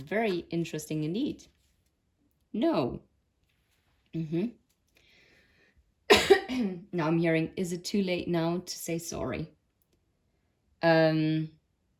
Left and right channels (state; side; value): identical; both; correlation 1.00